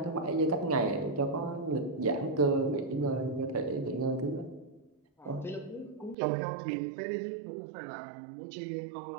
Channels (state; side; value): drops out; left; at 6.2 s